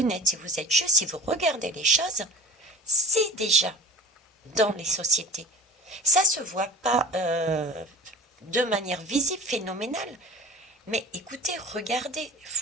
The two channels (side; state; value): both; normal; correlation 0.40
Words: si vous êtes juste, si vous regardez les choses, c'est déjà dans les sociétés. Ça se voit pas de manière visible, phénoménale. Mais écoutez, regardez,